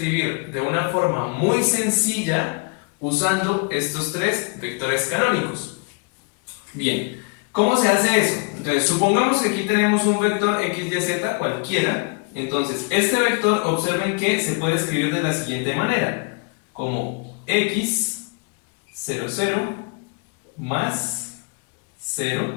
de una forma muy sencilla usando estos tres vectores canónicos. Bien, ¿cómo se hace eso? Entonces, supongamos que aquí tenemos un vector x, y, z cualquiera. Entonces, este vector, observen que se puede escribir de la siguiente manera, como x, 0, 0, más 0,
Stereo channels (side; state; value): right; quieter; 33.0 dB